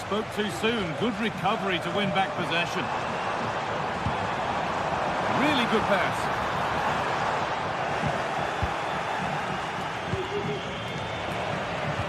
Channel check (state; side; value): identical; both; correlation 1.00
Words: too soon. Good recovery to win back possession. Really good pass.